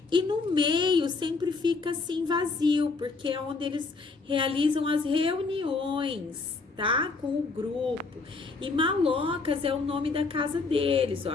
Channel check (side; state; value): right; quieter; 4.1 dB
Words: e no meio sempre fica assim vazio, porque é onde eles realizam as reuniões, tá? Com o grupo. E malocas é o nome da casa deles, ó.